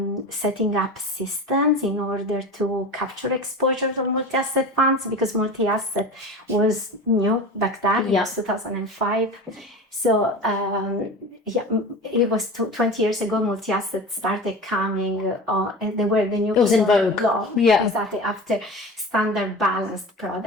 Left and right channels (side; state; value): both; normal; correlation 0.32